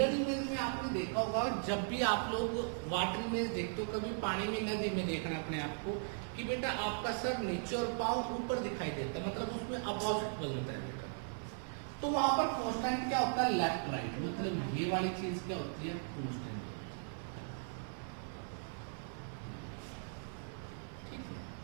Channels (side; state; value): left; silent; 52 dB below the other